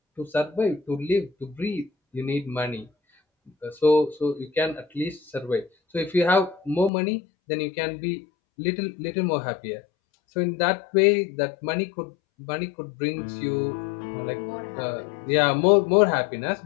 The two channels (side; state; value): right; drops out; at 6.9 s